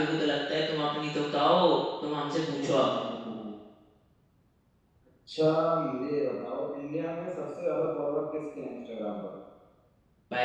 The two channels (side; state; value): both; identical; correlation 1.00